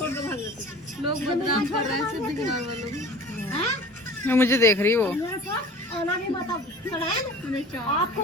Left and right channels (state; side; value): normal; both; correlation 0.42